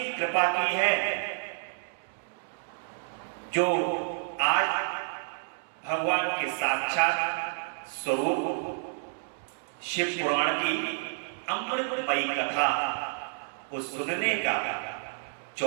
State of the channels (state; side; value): silent; left; digital silence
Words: कृपा की है, जो आज भगवान के साक्षात स्वरूप शिव पुराण की अमृतमयी कथा को सुनने का